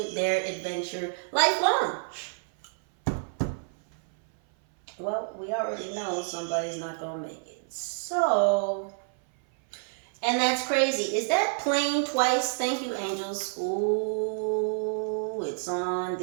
their adventure lifelong. Well, we already know somebody's not going to make it. So... and that's crazy. Is that plane twice? Thank you, angels. Ooh, it's on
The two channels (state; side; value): silent; left; 57 dB below the other